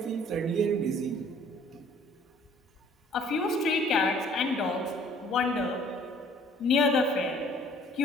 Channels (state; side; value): normal; both; correlation 0.56